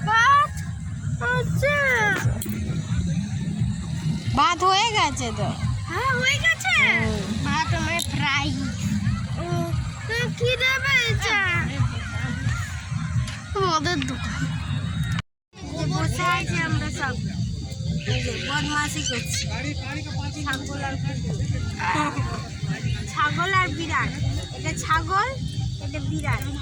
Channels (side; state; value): both; identical; correlation 1.00